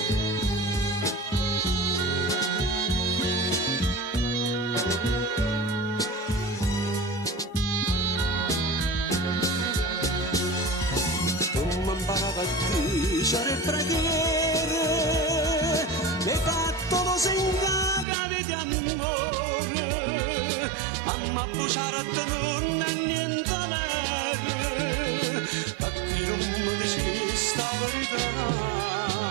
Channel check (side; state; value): left; drops out; at 18.1 s